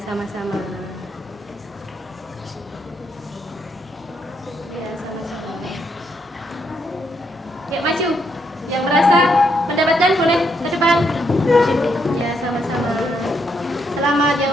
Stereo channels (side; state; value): both; normal; correlation 0.76